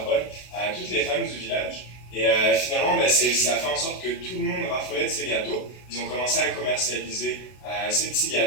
bonne à toutes les femmes du village. Et finalement, ça a fait en sorte que tout le monde raffolait de ces gâteaux. Ils ont commencé à commercialiser ces petits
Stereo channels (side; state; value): right; late; 32 ms